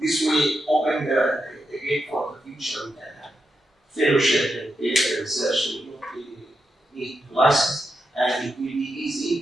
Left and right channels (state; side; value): normal; both; correlation 0.86